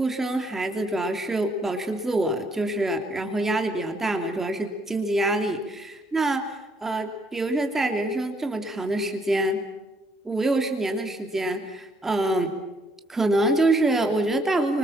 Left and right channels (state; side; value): normal; both; correlation 0.69